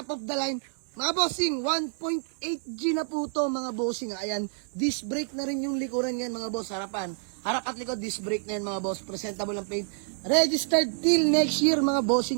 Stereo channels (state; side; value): silent; left; digital silence